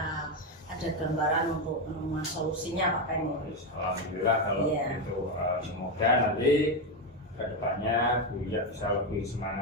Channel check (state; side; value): normal; both; correlation 0.09